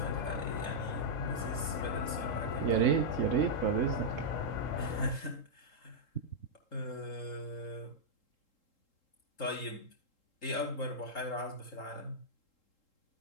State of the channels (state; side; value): late; right; 3.7 ms